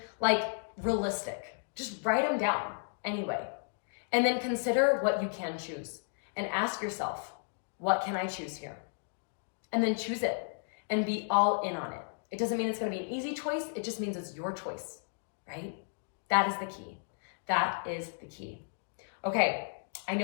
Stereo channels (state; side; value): silent; right; digital silence